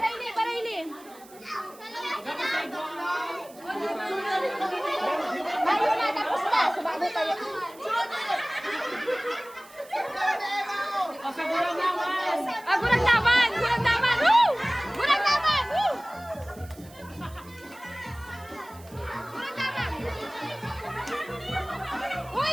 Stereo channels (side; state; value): right; noise; hiss, 23 dB below the sound